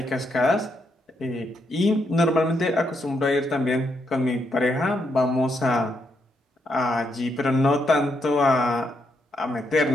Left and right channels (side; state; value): both; normal; correlation 0.78